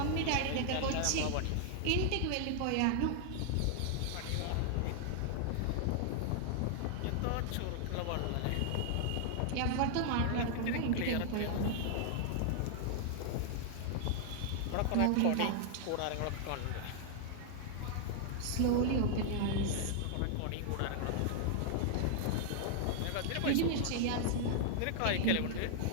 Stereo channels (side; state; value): both; different; correlation -0.01